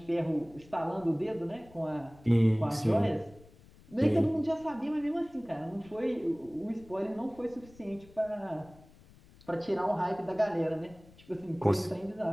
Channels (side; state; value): left; noise; rumble, 24 dB below the sound